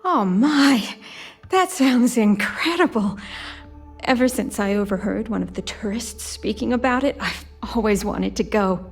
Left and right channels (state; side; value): identical; both; correlation 1.00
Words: Oh my, that sounds incredible. Ever since I overheard one of the tourists speaking about it, I've always wanted to go.